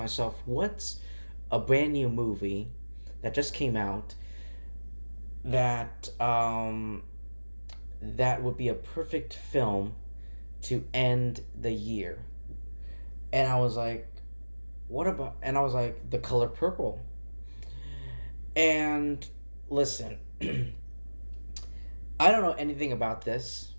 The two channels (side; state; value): both; inverted; correlation -1.00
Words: what's a brand new movie that just came out that that would be a perfect film to end the year? And I was like, what about? And I was like, The Color Purple. And listen, I don't know anything about this,